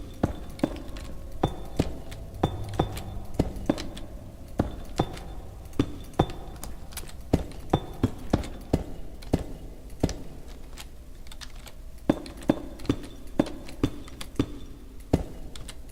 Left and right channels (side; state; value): both; identical; correlation 1.00